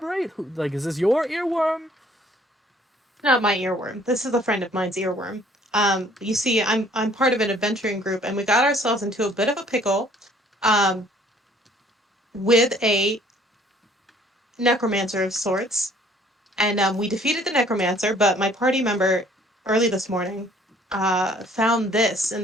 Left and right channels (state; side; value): normal; both; correlation 0.58